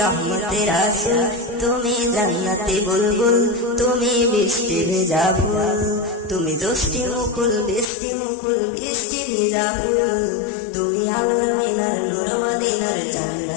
রহমতের রাসূল, তুমি জান্নাতি বুলবুল, তুমি বৃষ্টি ভেজা ফুল। তুমি জষ্টি মুকুল বৃষ্টি ভেজা ফুল, তুমি আলোর মিনার নূর মদিনার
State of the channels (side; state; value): right; drops out; at 7.9 s